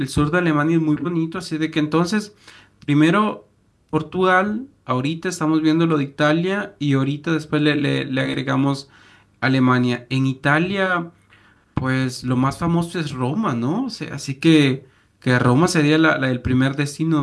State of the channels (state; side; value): identical; both; correlation 1.00